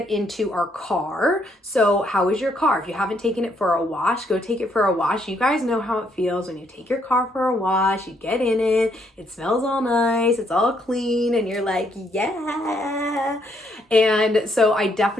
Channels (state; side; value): normal; both; correlation 0.72